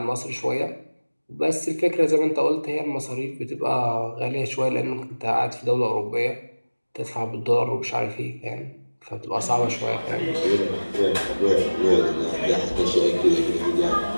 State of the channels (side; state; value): both; inverted; correlation -1.00